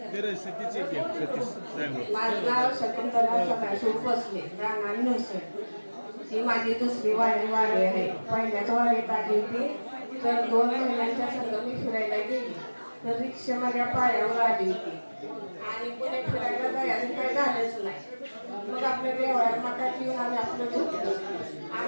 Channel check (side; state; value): both; inverted; correlation -1.00